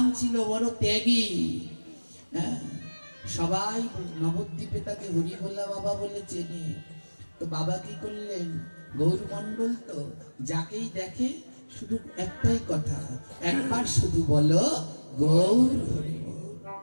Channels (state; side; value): inverted; both; correlation -1.00